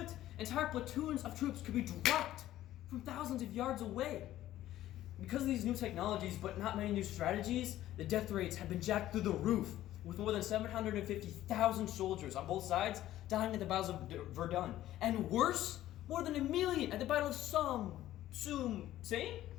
entire platoons of troops could be dropped from thousands of yards away. Because of these new technologies, but not many new strategies, the death rates have been jacked through the roof, with more than 750,000 soldiers on both sides dying at the battles of Verdun. And worse, more than 1 million at the Battle of Somme.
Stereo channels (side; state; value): right; quieter; 13.8 dB